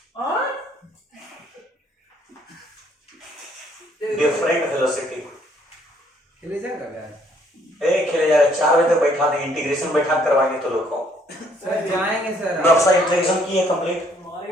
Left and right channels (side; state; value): both; normal; correlation 0.65